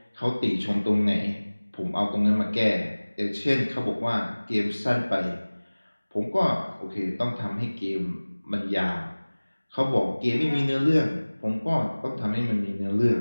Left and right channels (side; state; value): both; inverted; correlation -1.00